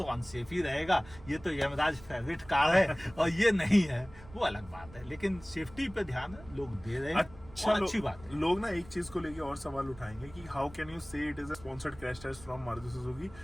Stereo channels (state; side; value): noise; right; rumble, 20 dB below the sound